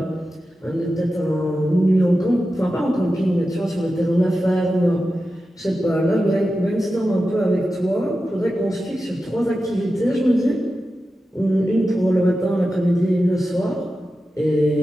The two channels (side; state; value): both; normal; correlation 0.92